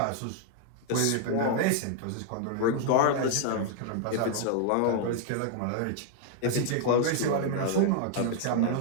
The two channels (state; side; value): different; both; correlation 0.00